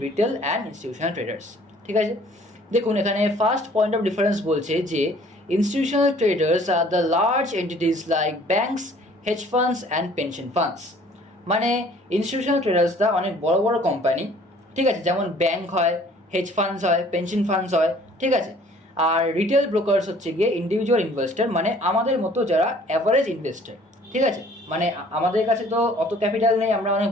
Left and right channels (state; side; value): normal; both; correlation 0.55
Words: retail and institutional traders. ঠিক আছে, দেখুন এখানে ফার্স্ট পয়েন্ট অফ ডিফারেন্স বলছে যে institutional traders are the large entities like banks, hedge funds and pension funds. মানে ইনস্টিটিউশনাল ট্রেডার্সরা অনেক বড় বড় কোম্পানি, ঠিক আছে, যেমন ব্যাংক হয়, হেজ ফান্ডস হয়, পেনশন ফান্ডস হয়, ঠিক আছে। আর রিটেল ব্রোকার্স হচ্ছে গিয়ে ইন্ডিভিজুয়াল ইনভেস্টর, মানে আমাদের মতো যারা অ্যাভারেজ ইনভেস্টর, ঠিক আছে। মানে আমাদের কাছে তো অত ক্যাপিটাল নেই, আমরা অনেক